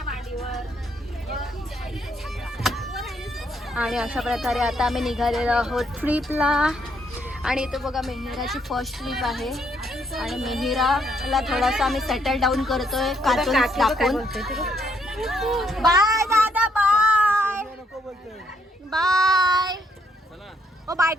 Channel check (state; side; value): normal; both; correlation 0.72